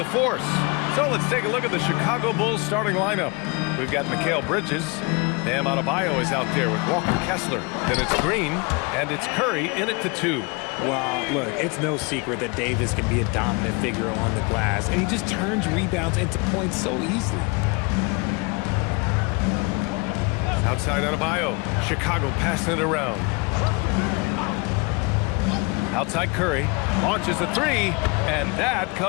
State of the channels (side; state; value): right; quieter; 28.6 dB